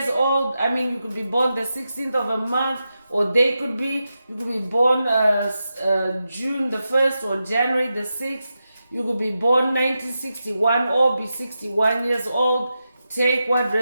old. I mean, you could be born the 16th of a month, or they could be, you could be born June the 1st or January the 6th. You could be born 1961 or be 61 years old. Take what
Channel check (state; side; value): inverted; both; correlation -0.89